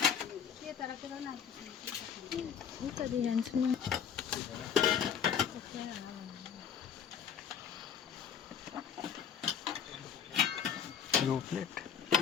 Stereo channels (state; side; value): quieter; right; 8.0 dB